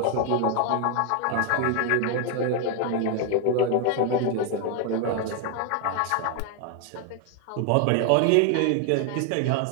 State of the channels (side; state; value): both; different; correlation 0.01